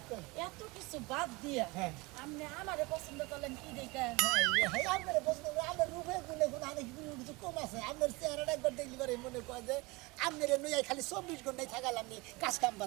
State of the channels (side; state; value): left; quieter; 24.5 dB